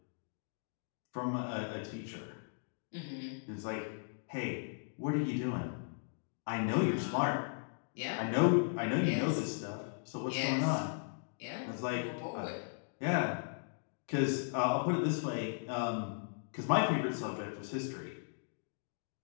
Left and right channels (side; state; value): right; silent; digital silence